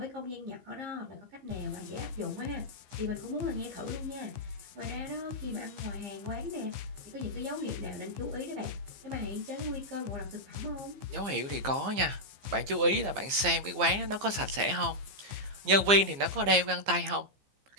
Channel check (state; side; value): late; left; 15 ms